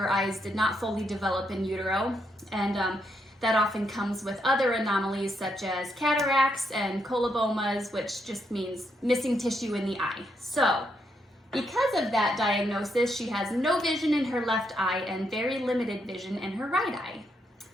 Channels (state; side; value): normal; both; correlation 0.78